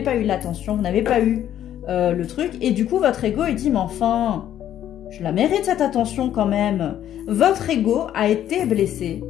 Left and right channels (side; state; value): right; quieter; 11.2 dB